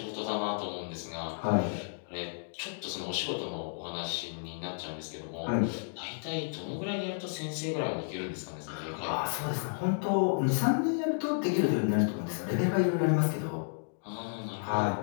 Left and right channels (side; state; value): right; silent; digital silence